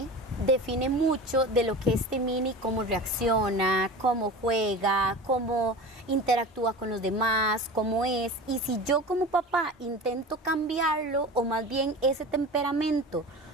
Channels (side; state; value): both; normal; correlation 0.33